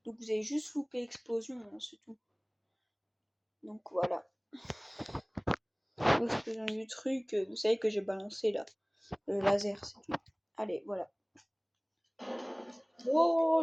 Donc vous avez juste loupé l'explosion, hein, c'est tout. Donc voilà. L'explosion du truc, vous savez que j'ai balancé là, le laser, c'est tout. Allez, voilà.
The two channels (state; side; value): identical; both; correlation 1.00